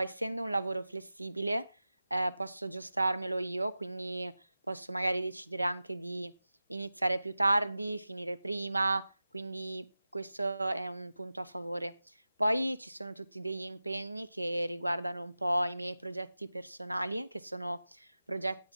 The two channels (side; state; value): both; inverted; correlation -0.96